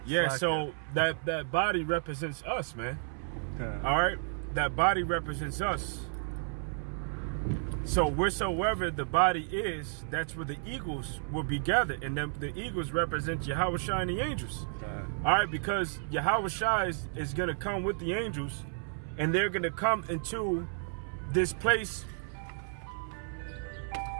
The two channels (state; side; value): silent; left; 56 dB below the other